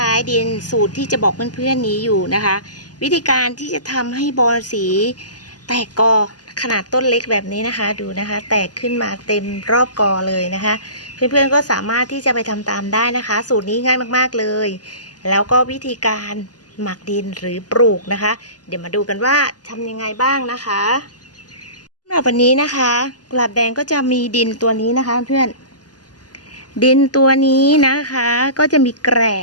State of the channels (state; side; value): late; right; 0.68 ms